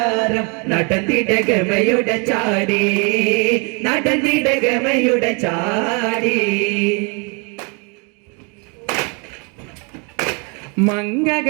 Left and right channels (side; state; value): left; quieter; 33.4 dB